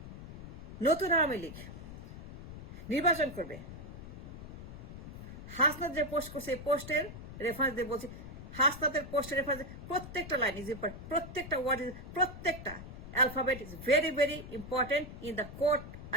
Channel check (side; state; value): left; noise; rumble, 12 dB below the sound